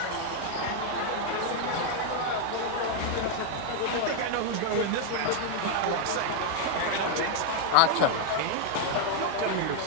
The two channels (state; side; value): different; both; correlation 0.00